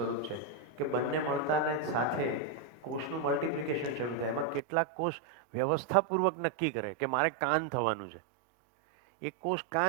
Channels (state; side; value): drops out; left; at 4.6 s